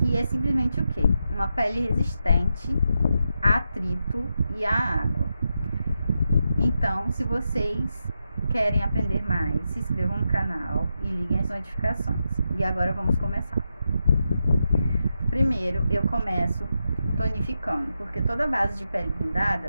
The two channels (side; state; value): both; inverted; correlation -0.86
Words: é simplesmente o quê? Uma pele resistente a atrito e a água. Então, se vocês querem aprender mais, se inscrevam no canal e liguem as notificações. E agora vamos começar. Primeiro, eu começo tonificando, porque toda base de pele